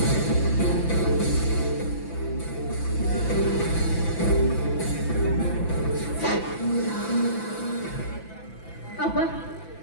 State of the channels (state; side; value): late; right; 6.0 ms